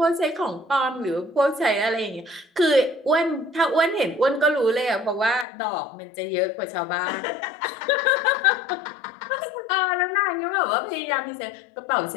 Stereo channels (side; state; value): right; drops out; at 5.5 s